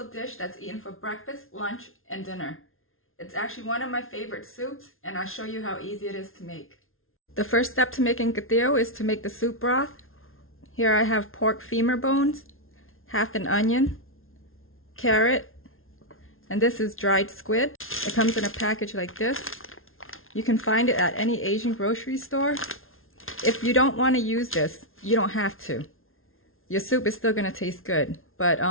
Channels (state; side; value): late; right; 0.61 ms